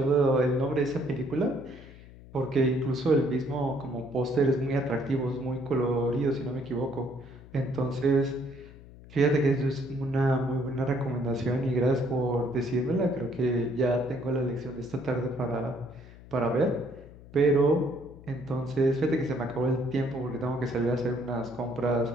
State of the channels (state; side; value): noise; left; hum, 19 dB below the sound